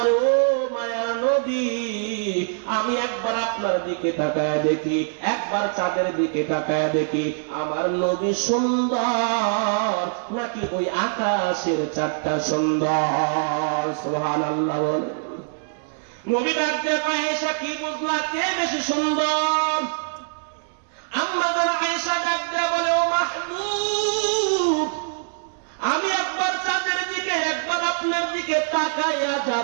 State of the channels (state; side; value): silent; left; digital silence